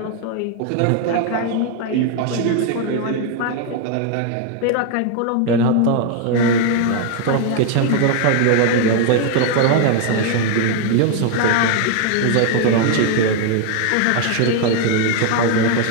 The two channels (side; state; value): both; different; correlation 0.00